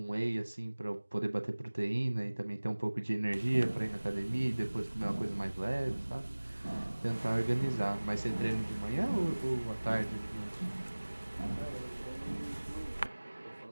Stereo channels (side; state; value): both; inverted; correlation -1.00